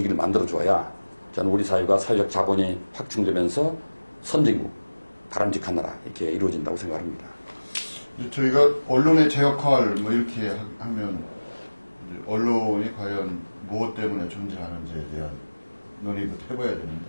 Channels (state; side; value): inverted; both; correlation -1.00